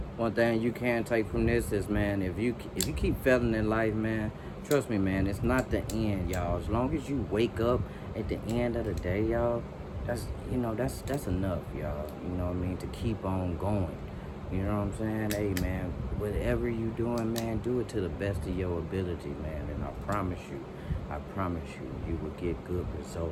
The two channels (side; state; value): both; identical; correlation 1.00